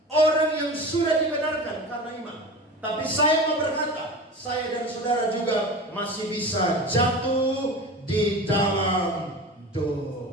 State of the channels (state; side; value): normal; both; correlation 0.32